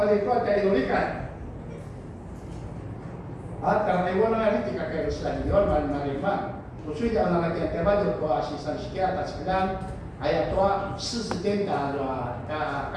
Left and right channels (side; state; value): both; identical; correlation 1.00